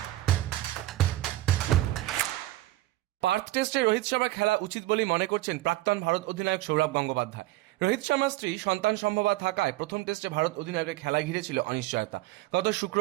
পার্থ টেস্টে রোহিত শর্মা খেলা উচিত বলেই মনে করছেন প্রাক্তন ভারত অধিনায়ক সৌরভ গঙ্গোপাধ্যায়। রোহিত শর্মার স্ত্রী সন্তান সম্ভবা থাকায় প্রথম টেস্টে ভারত অধিনায়কের খেলা ঘিরেছিল অনিশ্চয়তা। গত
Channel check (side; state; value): left; quieter; 16.7 dB